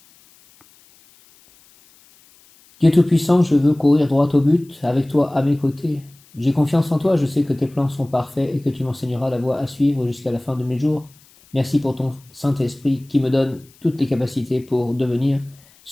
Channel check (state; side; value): noise; left; hiss, 29 dB below the sound